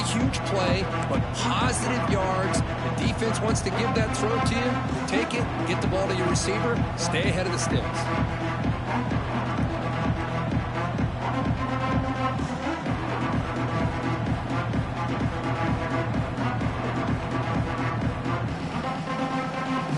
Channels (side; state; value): both; identical; correlation 1.00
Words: huge play, but positive yards. The defense wants to give that throw to you. You take it, get the ball to your receiver, stay ahead of the sticks.